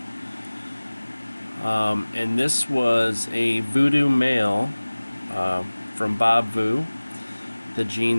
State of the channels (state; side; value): inverted; both; correlation -1.00